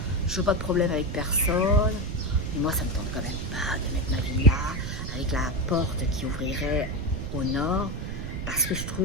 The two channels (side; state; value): right; noise; rumble, 5 dB below the sound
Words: Je veux pas de problème avec personne. Mais moi, ça me tente quand même pas de mettre ma vie là, avec la porte qui ouvrirait au nord, parce que je